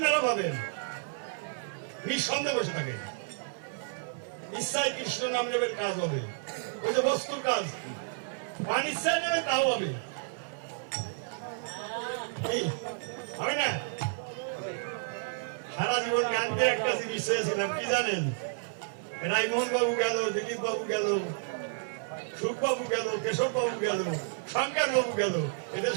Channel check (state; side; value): silent; left; digital silence